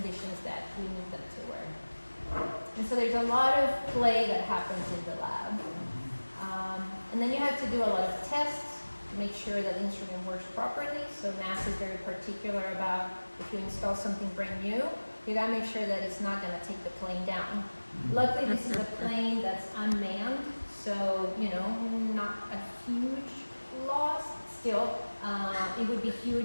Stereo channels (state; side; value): inverted; both; correlation -1.00